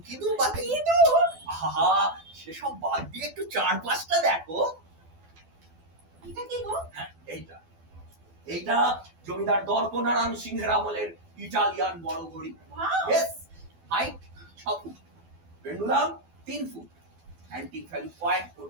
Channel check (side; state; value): left; late; 12 ms